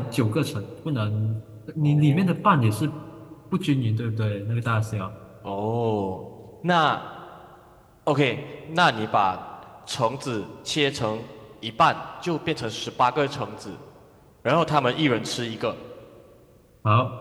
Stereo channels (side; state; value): both; identical; correlation 1.00